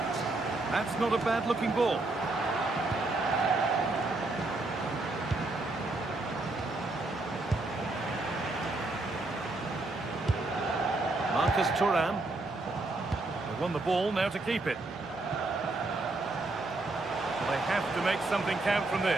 That's not a bad-looking ball. Marcus Thuram. They won the ball, now to keep it. They have to make something count from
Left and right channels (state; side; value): quieter; left; 3.0 dB